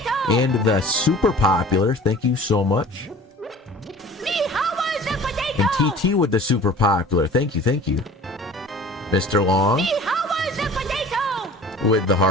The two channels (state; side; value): normal; both; correlation 0.44